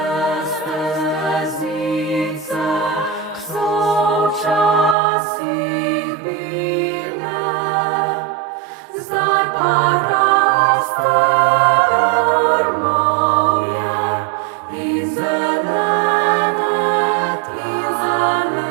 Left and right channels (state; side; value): drops out; left; at 5.0 s